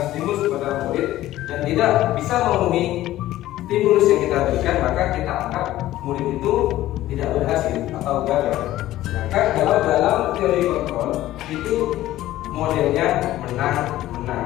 stimulus kepada murid dan tidak bisa memenuhi stimulus yang kita berikan, maka kita anggap murid itu tidak berhasil atau gagal. Sedangkan kalau dalam teori kontrol itu modelnya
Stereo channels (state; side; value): quieter; right; 14.9 dB